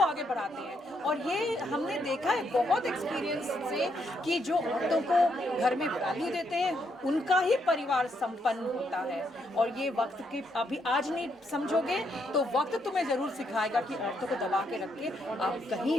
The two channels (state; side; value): normal; both; correlation 0.76